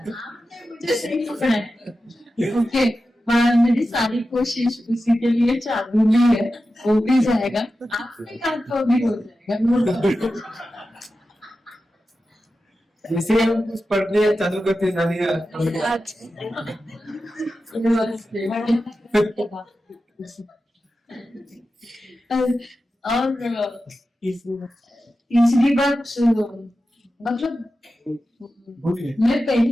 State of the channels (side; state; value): both; normal; correlation 0.92